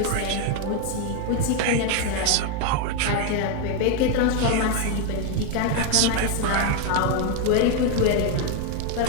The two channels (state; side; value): different; both; correlation 0.01